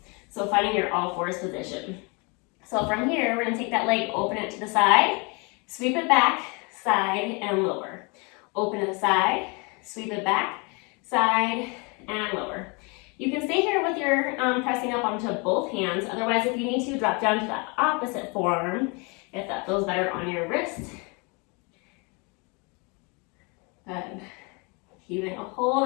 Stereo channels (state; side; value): quieter; right; 30.9 dB